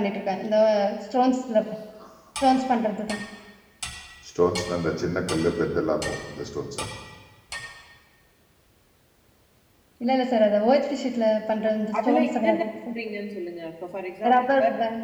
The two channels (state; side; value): identical; both; correlation 1.00